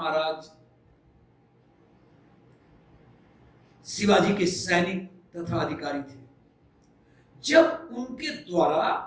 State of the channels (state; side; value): identical; both; correlation 1.00